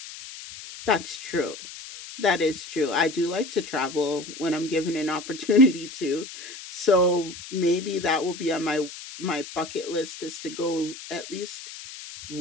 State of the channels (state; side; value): noise; left; hiss, 13 dB below the sound